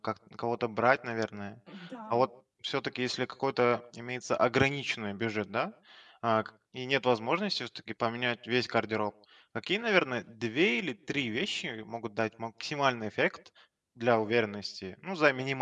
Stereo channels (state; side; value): identical; both; correlation 1.00